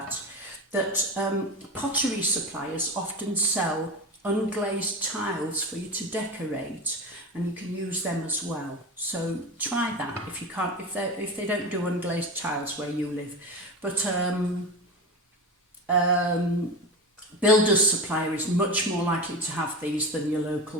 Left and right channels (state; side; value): normal; both; correlation 0.24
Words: pottery suppliers often sell unglazed tiles for you to decorate, and you can use them as well. So try that if you can't, if they don't do unglazed tiles where you live. But builder's supplier is much more likely to have these than your local